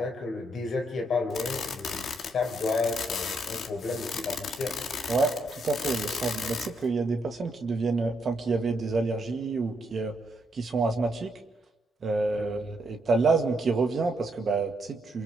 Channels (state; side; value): normal; both; correlation 0.77